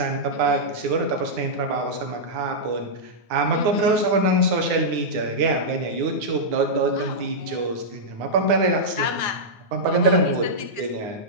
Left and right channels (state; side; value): late; left; 9.4 ms